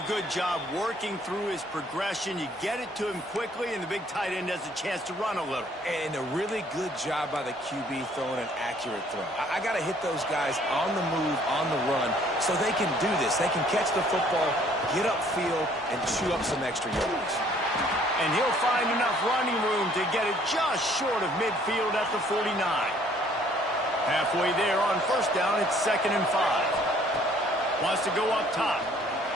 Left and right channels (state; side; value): normal; both; correlation 0.60